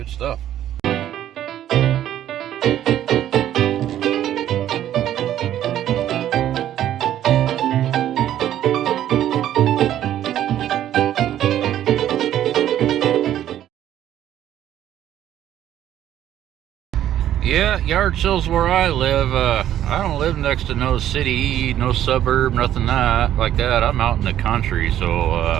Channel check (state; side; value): quieter; left; 11.7 dB